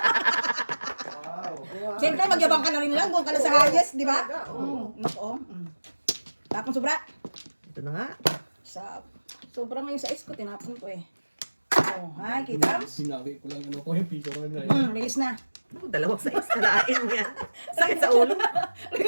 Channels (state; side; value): inverted; both; correlation -1.00